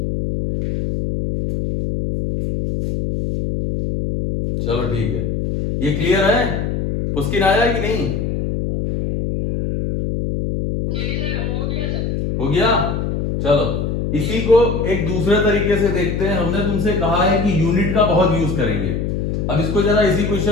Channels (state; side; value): noise; left; hum, 1 dB below the sound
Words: चलो ठीक है, ये क्लियर है? पुस्किन आया कि नहीं? हो गया। चलो इसी को एक दूसरे तरीके से देखते हैं। हमने तुमसे कहा है कि यूनिट का बहुत यूज करेंगे। अब इसको जरा इसी